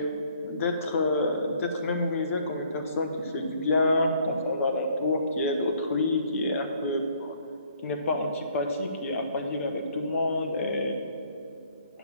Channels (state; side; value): inverted; both; correlation -0.62